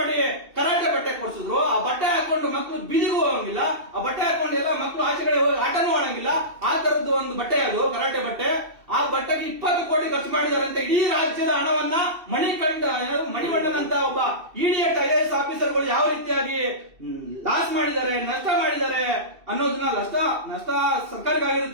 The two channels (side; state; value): left; late; 2.7 ms